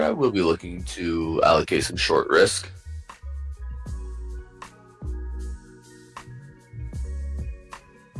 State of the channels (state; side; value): identical; both; correlation 1.00